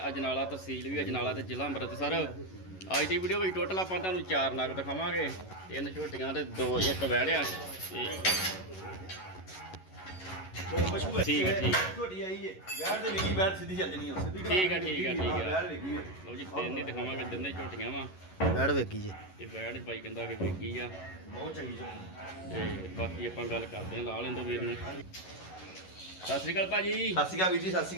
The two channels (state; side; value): late; right; 11 ms